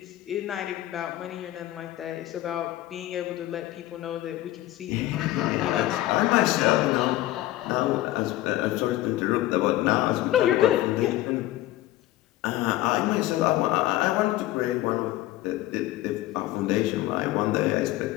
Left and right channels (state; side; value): quieter; right; 15.6 dB